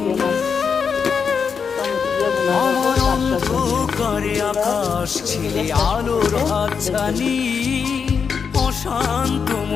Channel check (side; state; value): right; quieter; 6.2 dB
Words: আমার অন্ধকারে আকাশ ছিলে আলোর হাতছানি, অশান্ত